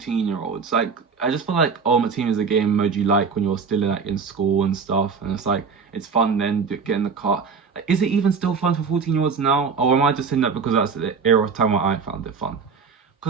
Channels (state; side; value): quieter; left; 5.5 dB